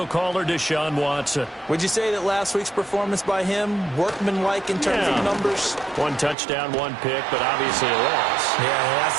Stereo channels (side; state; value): left; drops out; at 6.4 s